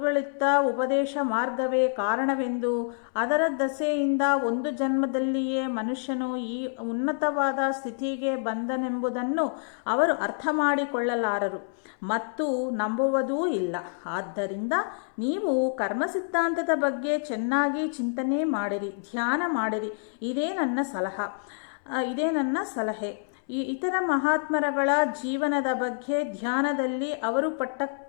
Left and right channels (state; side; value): silent; right; 60 dB below the other